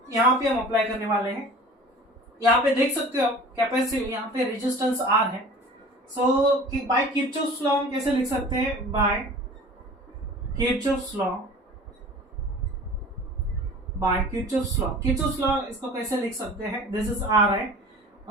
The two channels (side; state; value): both; normal; correlation 0.42